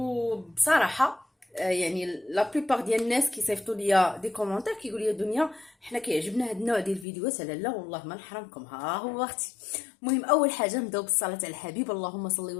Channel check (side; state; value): right; drops out; at 7.1 s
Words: يعني لا بليبار ديال الناس كيصيفطوا ليا دي كومونتير كيقولوا لي دنيا حنا كيعجبنا هاد النوع ديال الفيديوهات. لا والله ما نحرمكم، ها هو اختي. المهم اول حاجه نبداو بالصلاه على الحبيب، اللهم صل